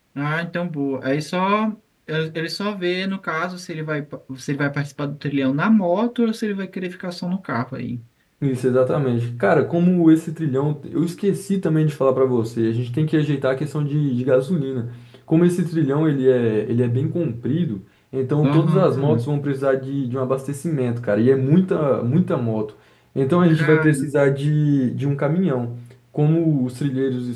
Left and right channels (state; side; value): identical; both; correlation 1.00